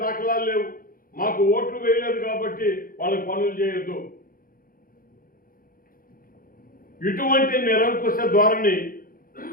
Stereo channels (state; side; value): late; right; 0.41 ms